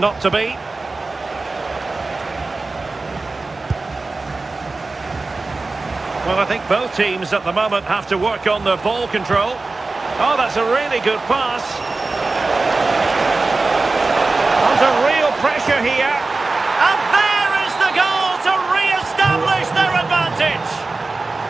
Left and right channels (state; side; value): quieter; left; 3.5 dB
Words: to be. Well, I think both teams at the moment have to work on their ball control. Oh, that's a really good pass. Under real pressure here. And there is the goal to re-establish their advantage.